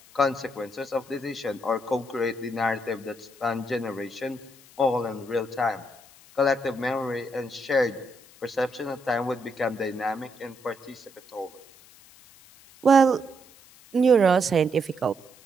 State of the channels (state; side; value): noise; left; hiss, 24 dB below the sound